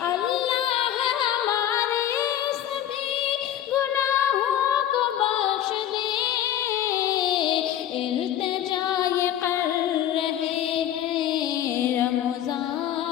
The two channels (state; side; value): quieter; right; 11.3 dB